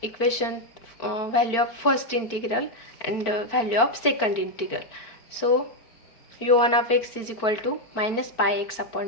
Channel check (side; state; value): right; late; 4.4 ms